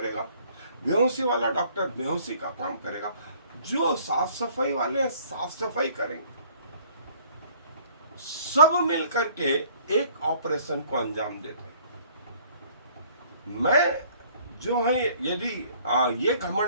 बेहोशी वाला डॉक्टर बेहोशी का काम करेगा, जो साफ सफाई वाले साफ सफाई करेंगे। सब मिल करके एक ऑपरेशन को अंजाम देते हैं। मैं जो है यदि ये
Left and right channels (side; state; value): both; inverted; correlation -0.57